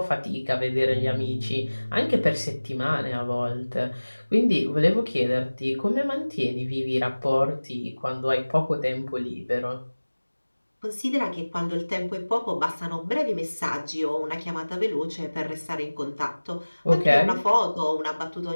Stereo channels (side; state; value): both; inverted; correlation -1.00